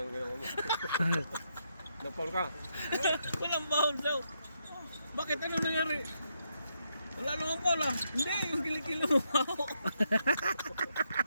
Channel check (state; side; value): inverted; both; correlation -0.79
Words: Napol ka. Walang bawal daw. Bakit? Ano nangyari? Wala naman Paul ah. Hindi, yung kilig mo ako.